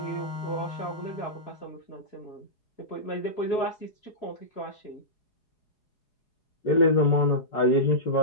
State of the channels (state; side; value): late; right; 4.8 ms